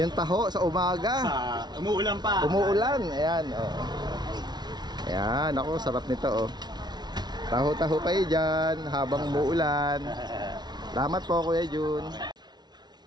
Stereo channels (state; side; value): late; left; 0.20 ms